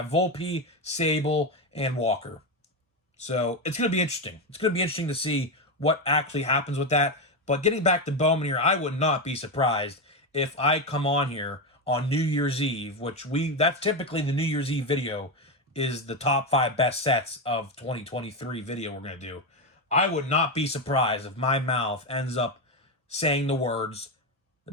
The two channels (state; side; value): normal; both; correlation 0.12